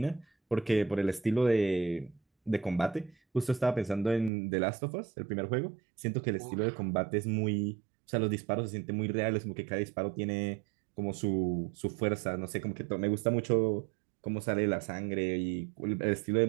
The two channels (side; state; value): left; drops out; at 4.3 s